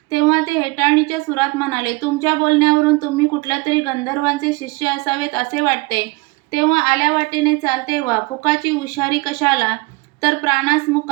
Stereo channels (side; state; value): left; quieter; 24.9 dB